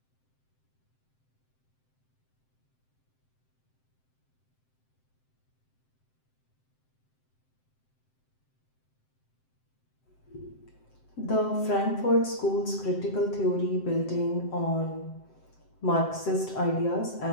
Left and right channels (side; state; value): right; late; 7.8 ms